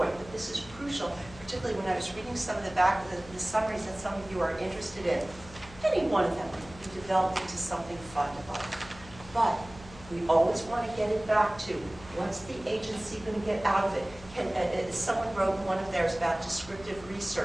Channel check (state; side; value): noise; left; hum, 19 dB below the sound